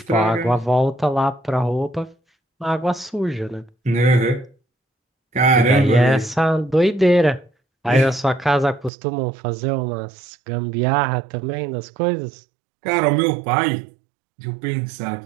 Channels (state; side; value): drops out; left; at 8.9 s